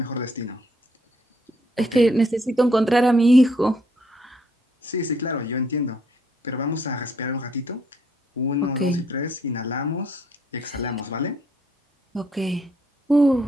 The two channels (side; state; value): both; normal; correlation 0.68